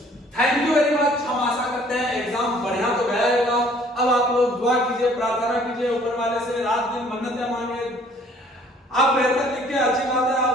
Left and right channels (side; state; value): both; normal; correlation 0.57